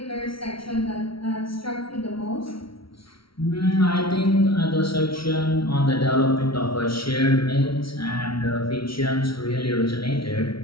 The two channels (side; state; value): right; late; 0.75 ms